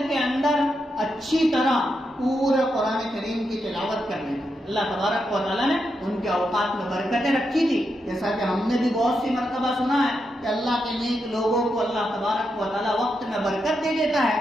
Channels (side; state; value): both; normal; correlation 0.84